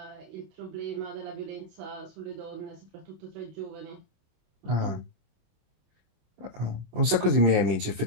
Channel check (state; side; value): late; left; 26 ms